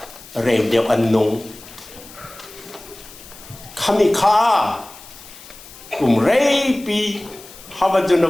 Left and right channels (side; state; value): left; noise; hiss, 19 dB below the sound